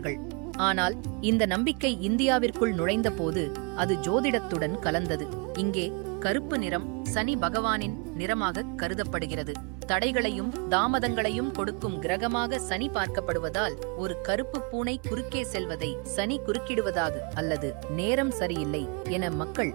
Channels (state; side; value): quieter; left; 32.7 dB